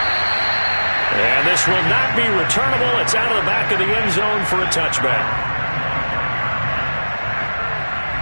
And this will not be returnable. It's out of the back of the end zone for a touchback.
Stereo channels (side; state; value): both; inverted; correlation -1.00